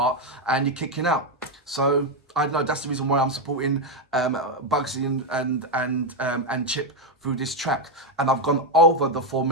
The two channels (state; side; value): normal; both; correlation 0.05